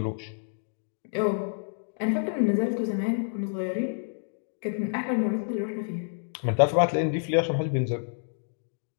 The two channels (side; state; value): right; silent; digital silence